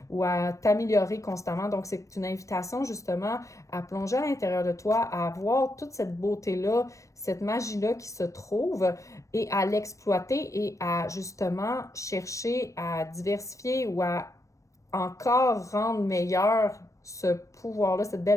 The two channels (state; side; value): late; right; 0.15 ms